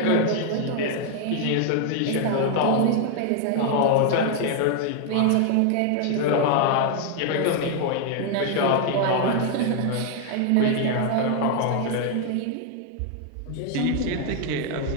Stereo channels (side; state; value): both; different; correlation 0.00